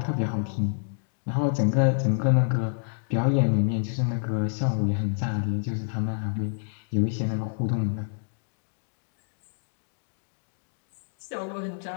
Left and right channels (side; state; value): right; silent; digital silence